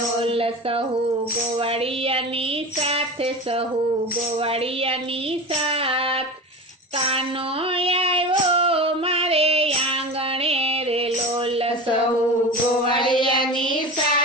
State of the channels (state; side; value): normal; both; correlation 0.30